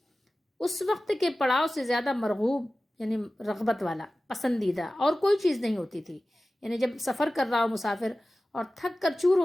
اس وقت کے پڑاؤ سے زیادہ مرغوب، یعنی رغبت والا، پسندیدہ اور کوئی چیز نہیں ہوتی تھی۔ یعنی جب سفر کر رہا ہو مسافر اور تھک کر چور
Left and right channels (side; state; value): both; normal; correlation 0.96